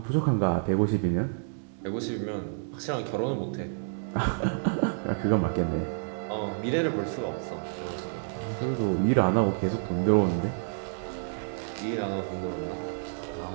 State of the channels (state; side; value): silent; left; digital silence